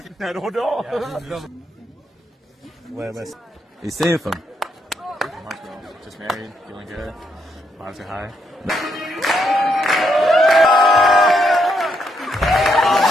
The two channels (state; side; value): normal; both; correlation 0.77